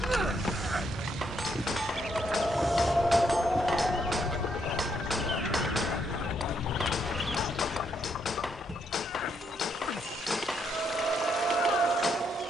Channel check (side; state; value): both; normal; correlation 0.75